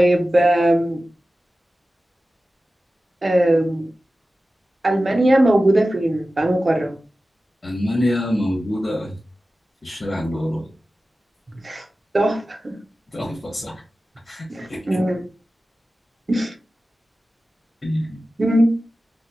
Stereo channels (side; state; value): both; normal; correlation 0.95